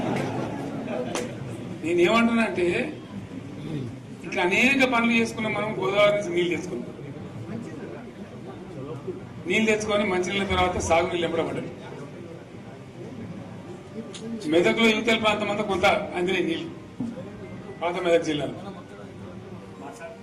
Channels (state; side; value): identical; both; correlation 1.00